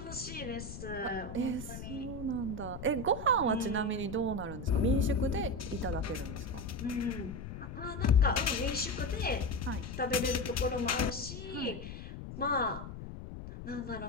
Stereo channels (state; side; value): noise; left; rumble, 10 dB below the sound